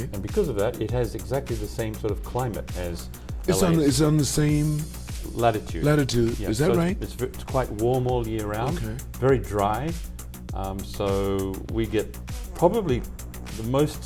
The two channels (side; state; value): both; identical; correlation 1.00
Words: And because of that, it has exactly the same sort of climate as It's LA. on the same latitude. latitude. Yeah, Is that so right? It's quite warm all year round, Okay. very dry. So we get probably the most